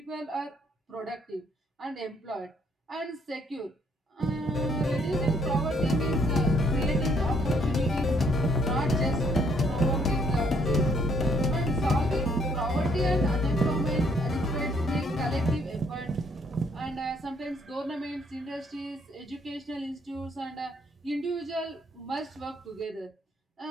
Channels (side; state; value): both; normal; correlation 0.67